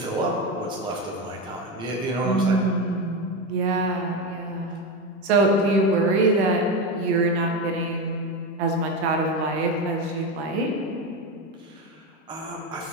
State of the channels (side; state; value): both; normal; correlation 0.15